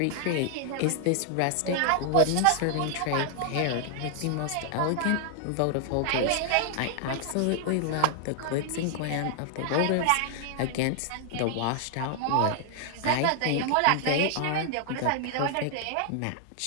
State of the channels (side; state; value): both; different; correlation 0.00